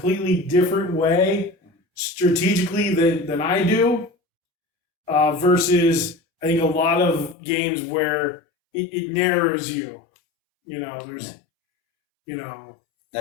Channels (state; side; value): drops out; right; at 7.4 s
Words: different way strategically than I do, versus I think a lot of games where it narrows you. There's, Now,